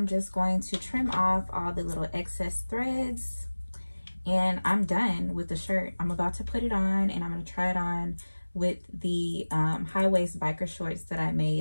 just going to trim off all the little excess threads, and I'm done with the shirt. I'm about to put it on, and I'm going to try it on with the high-waist biker shorts that I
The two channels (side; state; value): both; inverted; correlation -1.00